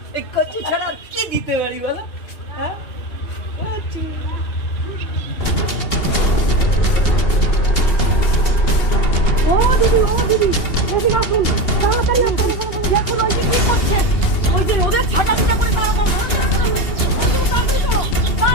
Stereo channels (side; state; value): right; late; 2.8 ms